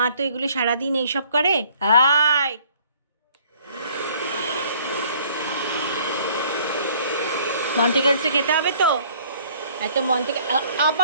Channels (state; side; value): inverted; both; correlation -0.58